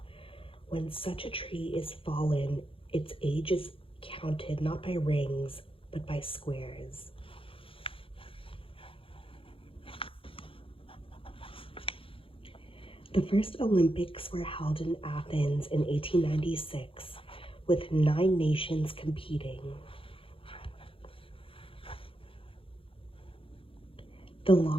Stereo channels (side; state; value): right; late; 0.26 ms